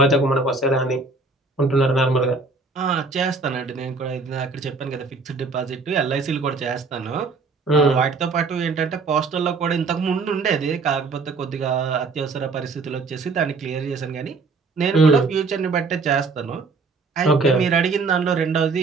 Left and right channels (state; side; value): quieter; left; 4.1 dB